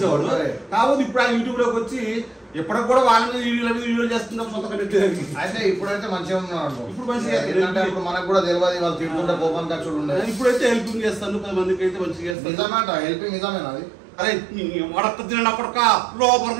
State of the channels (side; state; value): left; drops out; at 12.4 s